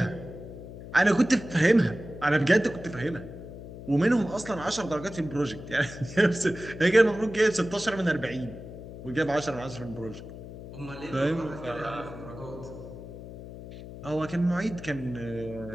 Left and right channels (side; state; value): left; noise; hum, 13 dB below the sound